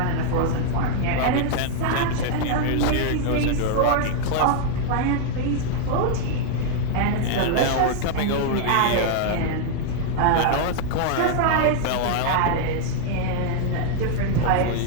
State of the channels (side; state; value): both; different; correlation -0.01